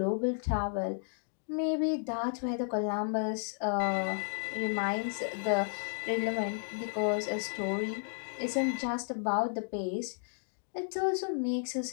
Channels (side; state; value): right; silent; digital silence